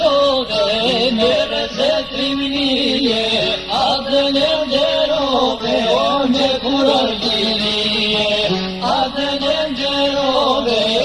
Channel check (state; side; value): identical; both; correlation 1.00